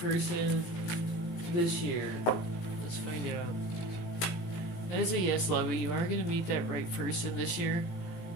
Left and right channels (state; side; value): late; right; 17 ms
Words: this year? Let's find out. That is a yes, lovey. You are going to meet that right person this year.